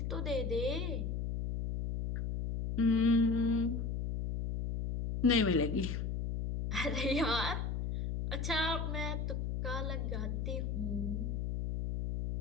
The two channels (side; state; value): left; noise; hum, 2 dB below the sound